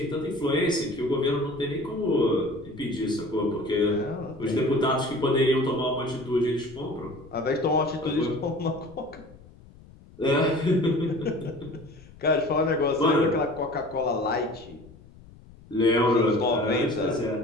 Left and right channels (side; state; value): left; noise; rumble, 22 dB below the sound